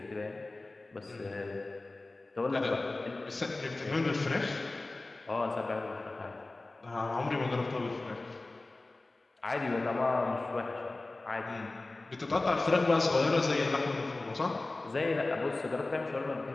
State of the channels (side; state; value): right; quieter; 3.1 dB